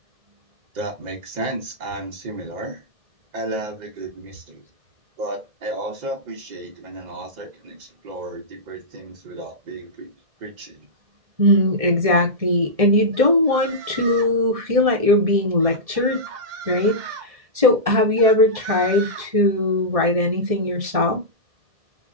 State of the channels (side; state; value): left; late; 1.7 ms